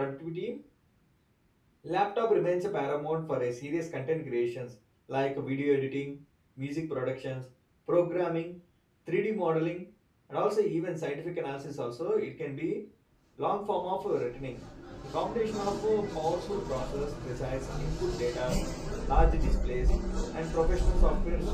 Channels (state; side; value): identical; both; correlation 1.00